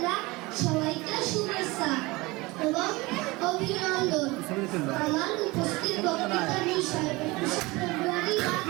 সবাইকে শুভেচ্ছা এবং অভিনন্দন। আমার উপস্থিত বক্তৃতার বিষয় 21শে ফেব্রুয়ারি বা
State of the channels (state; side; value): quieter; left; 22.6 dB